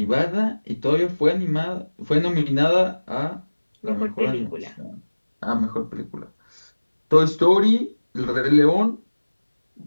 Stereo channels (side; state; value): both; inverted; correlation -1.00